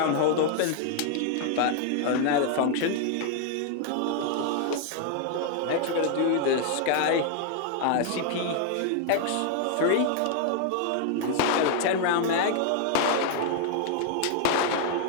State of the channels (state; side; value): different; both; correlation 0.00